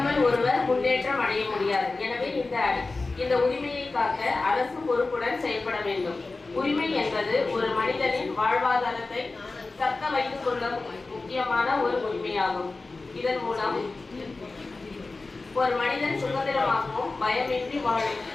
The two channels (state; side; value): quieter; right; 3.6 dB